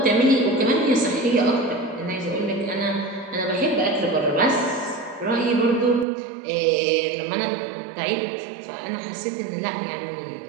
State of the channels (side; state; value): left; drops out; at 6.1 s